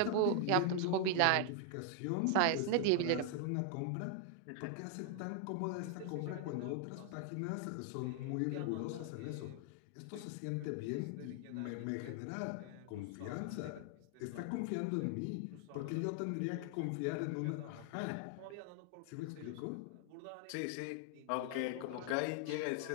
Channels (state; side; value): different; both; correlation 0.00